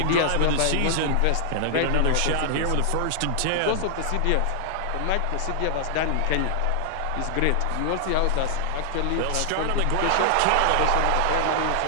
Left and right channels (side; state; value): both; different; correlation 0.00